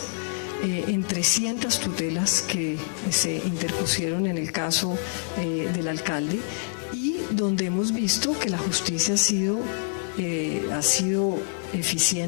en 300 tutelas que se interpusieron en el caso del alcalde, y donde hemos visto que la justicia ha sido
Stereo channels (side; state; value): right; silent; 60 dB below the other